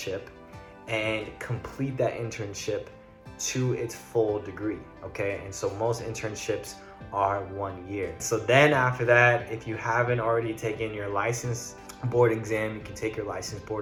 and complete that internship to its full degree, okay? And so most internships are 1 year. So then after that, if you haven't already taken your license board exam, you can take your license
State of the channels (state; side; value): identical; both; correlation 1.00